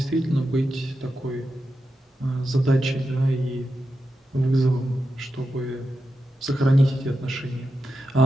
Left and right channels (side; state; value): both; normal; correlation 0.89